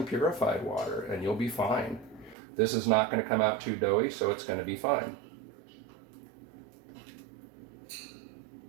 purified water and you'll be fine. This is not going to come out too doughy, so it's going to be fine.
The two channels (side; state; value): left; drops out; at 2.4 s